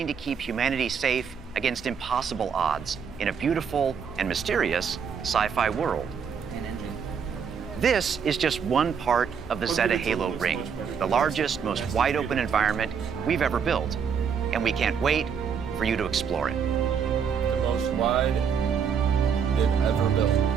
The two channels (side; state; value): left; quieter; 6.9 dB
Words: to keep humanity safe against impossible odds in a beautiful and mysterious sci-fi world. This is just one part of the Zeta Halo Ring, the largest, most wide-open environment we've ever built, and we can't wait for you to explore it. The most wide they've ever built.